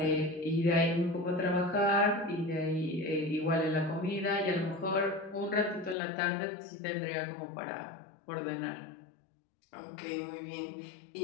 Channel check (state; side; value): drops out; right; at 6.0 s